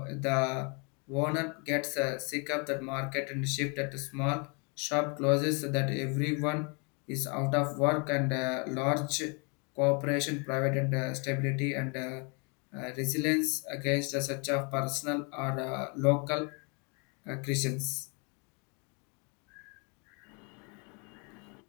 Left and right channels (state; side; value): quieter; right; 33.9 dB